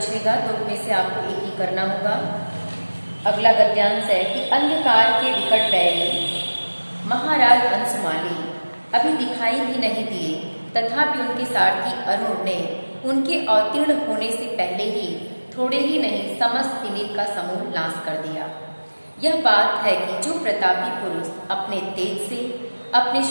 तो उनमें से आपको एक ही करना होगा। अगला गद्यांश है कि अंधकार के विकट बैरी महाराज अंशुमाली अभी दिखाई भी नहीं दिए, तथापि उनके सारथी अरुण ने उनके अवतीर्ण होने से पहले ही थोड़े ही नहीं समस्त तिमिर का समूह नाश कर दिया। यह बात है कि जो प्रतापी पुरुष अपने तेज से अपने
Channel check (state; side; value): inverted; both; correlation -1.00